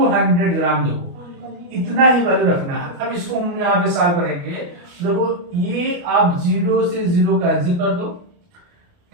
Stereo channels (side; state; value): left; late; 29 ms